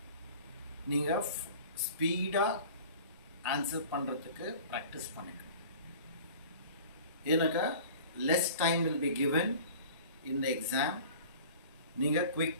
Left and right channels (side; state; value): both; inverted; correlation -0.43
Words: neenga speed answer பண்றதுக்கு practice பண்ணுங்க. ஏனக்கா less time will be given in the exam. நீங்கள்